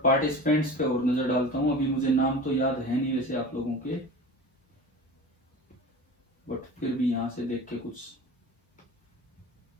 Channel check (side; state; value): both; normal; correlation 0.35